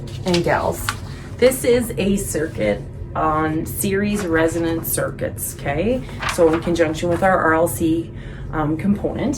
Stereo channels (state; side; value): identical; both; correlation 1.00